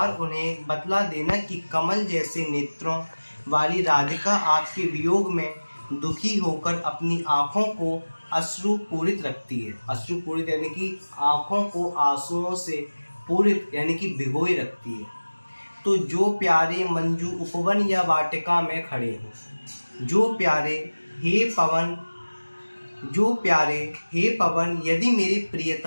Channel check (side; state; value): both; inverted; correlation -1.00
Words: उन्हें बतला देना कि कमल जैसे नेत्रों वाली राधिका आपके वियोग में दुखी होकर अपनी आँखों को अश्रु पूरित रखती है। अश्रु पूरित यानी कि आँखों को आंसुओं से पूरित यानी कि भिगोए रखती है। तो जो प्यारे मंजू उपवन या वाटिका में खड़े हो, जो प्यारे, हे पवन, जो प्यारे हे पवन यदि मेरे